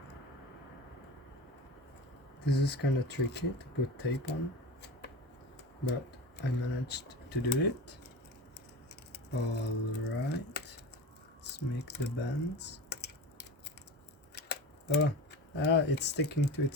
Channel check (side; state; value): both; normal; correlation 0.30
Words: This is kind of tricky to put tape on, but I managed to do it. Alright, let's make the bends. Oh, it's sticking to